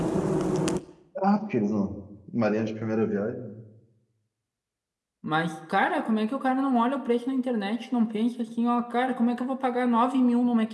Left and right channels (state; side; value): identical; both; correlation 1.00